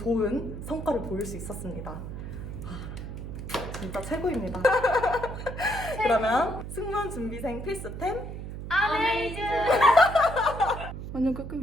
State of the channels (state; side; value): noise; right; hum, 8 dB below the sound